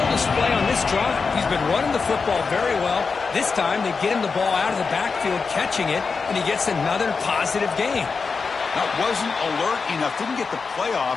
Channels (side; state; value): right; quieter; 4.9 dB